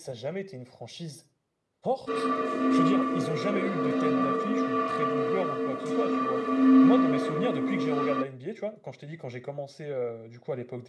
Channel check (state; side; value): identical; both; correlation 1.00